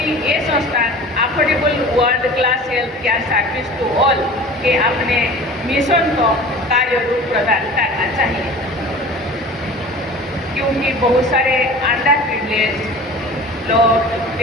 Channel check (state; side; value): normal; both; correlation 0.40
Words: ये संस्थान affordable world class health care service to all के अपने मिशन को कार्य रूप प्रदान करना चाहिए, क्योंकि बहुत सारे अंडर प्रिविलेज लोग